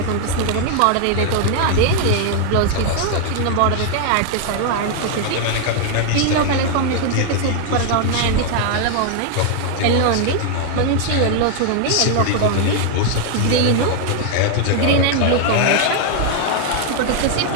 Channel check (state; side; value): different; both; correlation 0.00